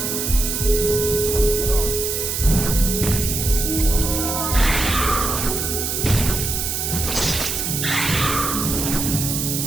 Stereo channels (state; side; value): noise; right; hiss, 2 dB below the sound